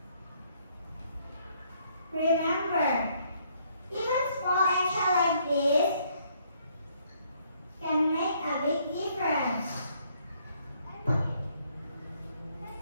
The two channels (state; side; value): inverted; both; correlation -0.67